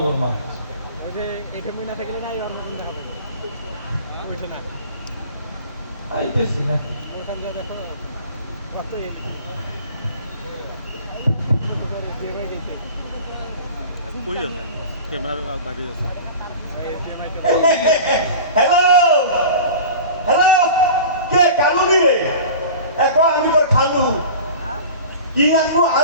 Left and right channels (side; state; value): both; inverted; correlation -0.38